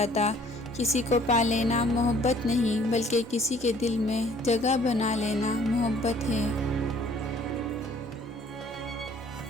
کسی کو پا لینا محبت نہیں بلکہ کسی کے دل میں جگہ بنا لینا محبت ہے۔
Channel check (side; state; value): both; normal; correlation 0.57